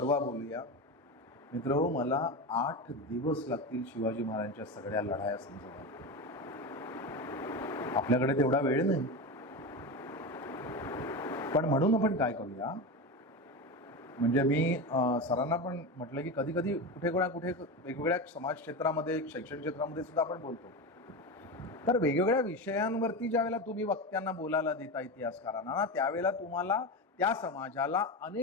बोलूया. मित्र, मला 8 दिवस लागतील शिवाजी महाराजांच्या सगळ्या लढाया समजायला. आपल्याकडे तेवढा वेळ नाही. पण म्हणून आपण काय करूया, म्हणजे मी सरांना पण म्हटलं की कधी कधी कुठे वेगवेगळ्या समाज क्षेत्रामध्ये, शैक्षणिक क्षेत्रामध्ये सुद्धा आपण बोलतो, तर वेगवेगळ्या विषयांवरती ज्यावेळेला तुम्ही वक्त्यांना बोलायला देता इतिहासकारांना ना, त्यावेळेला तुम्हाला त्या समाजाला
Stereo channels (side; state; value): both; normal; correlation 0.21